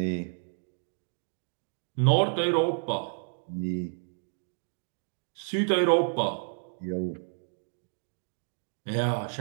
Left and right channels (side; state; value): left; silent; digital silence